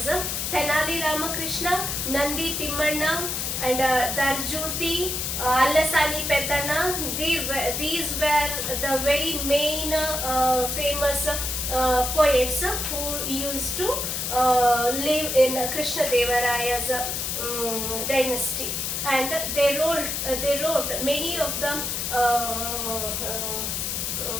Tenali Ramakrishna, Nandi Timmanna and Darjuti, Allasani Peddana, these were the very main famous poets who used to live in Krishnadevaraya's dynasty, and they wrote many of the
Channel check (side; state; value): left; noise; hiss, 2 dB below the sound